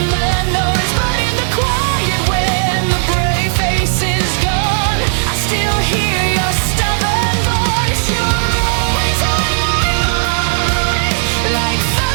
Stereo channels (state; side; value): silent; left; digital silence